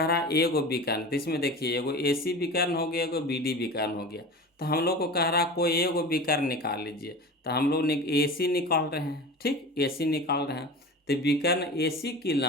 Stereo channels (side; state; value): both; normal; correlation 0.33